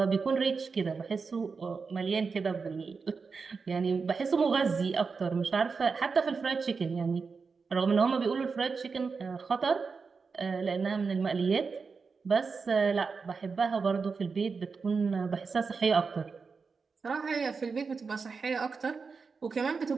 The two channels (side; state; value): left; quieter; 5.0 dB